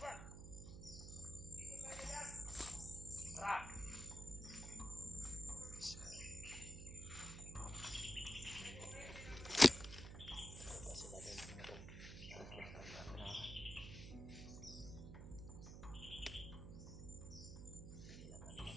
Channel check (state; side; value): noise; right; hum, 9 dB below the sound